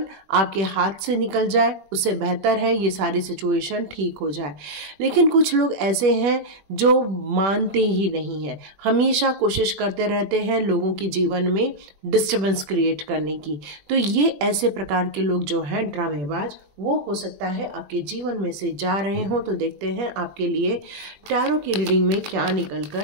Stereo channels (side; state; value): left; late; 21 ms